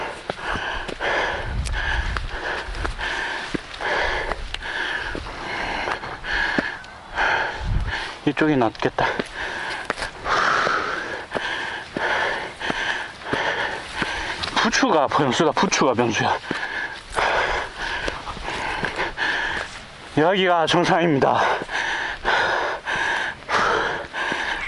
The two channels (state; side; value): identical; both; correlation 1.00